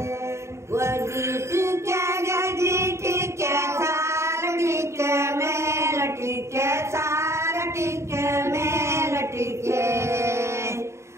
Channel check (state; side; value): late; left; 0.14 ms